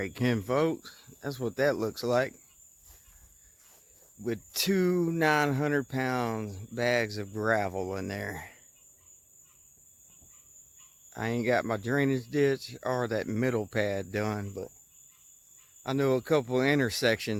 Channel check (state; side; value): identical; both; correlation 1.00